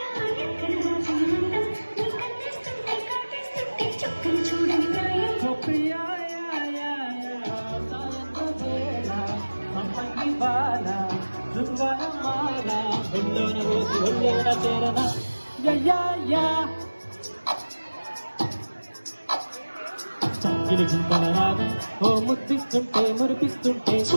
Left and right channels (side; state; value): both; inverted; correlation -1.00